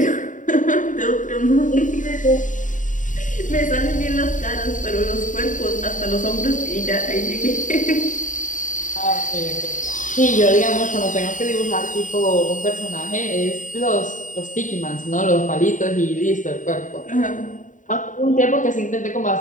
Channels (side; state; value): right; late; 0.37 ms